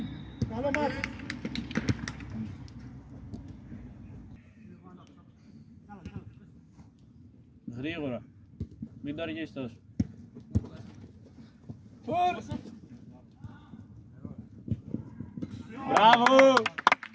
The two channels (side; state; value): both; identical; correlation 1.00